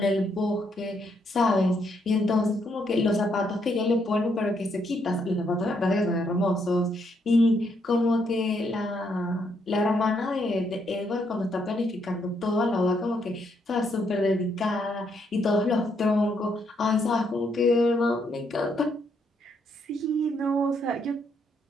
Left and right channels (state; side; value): normal; both; correlation 0.75